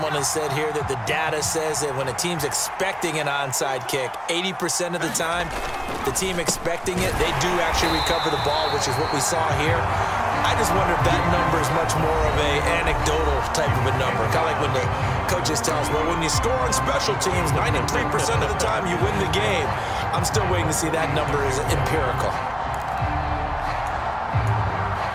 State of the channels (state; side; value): identical; both; correlation 1.00